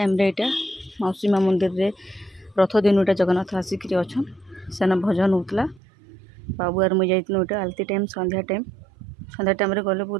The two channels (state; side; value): drops out; left; at 5.8 s